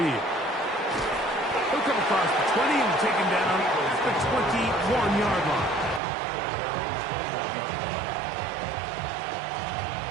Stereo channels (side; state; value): left; drops out; at 6.0 s